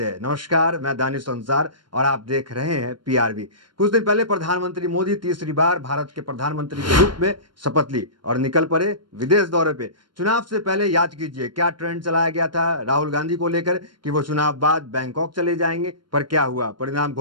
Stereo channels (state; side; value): late; left; 0.72 ms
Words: हैं। नमस्कार, मैं दानिश अंसार और आप देख रहे हैं पीआरबी। कुछ दिन पहले प्रधानमंत्री मोदी तीसरी बार भारत के प्रधानमंत्री के रूप में शपथ ली और निकल पड़े विदेश दौरे पे। चुनाव से पहले याद कीजिए क्या ट्रेंड चलाया गया था राहुल गांधी को लेकर कि वो चुनाव बाद बैंकॉक चले जाएंगे, पर क्या हुआ? परिणाम